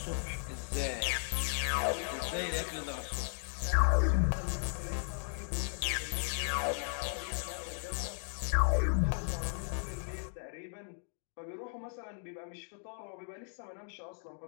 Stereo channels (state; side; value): silent; right; digital silence